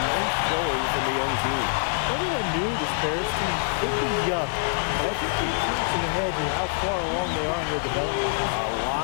nice showing from the young team. Everyone knew this Paris team could be young, but I think they've turned some heads with how far along they are in their development. A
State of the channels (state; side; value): silent; right; 61 dB below the other